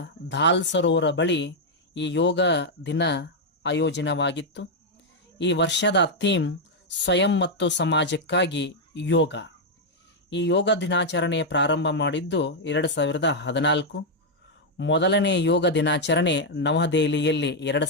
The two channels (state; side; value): normal; both; correlation -0.02